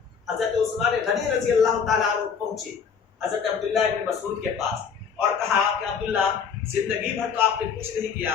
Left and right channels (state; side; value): quieter; right; 6.5 dB